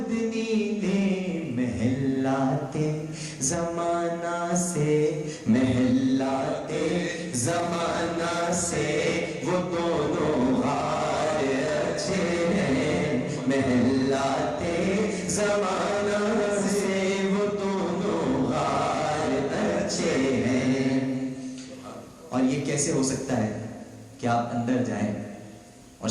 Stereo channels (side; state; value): both; identical; correlation 1.00